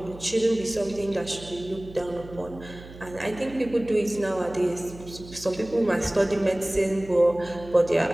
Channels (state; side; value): noise; right; hum, 17 dB below the sound